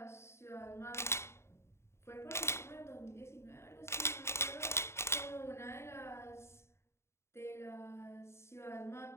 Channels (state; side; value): late; right; 0.13 ms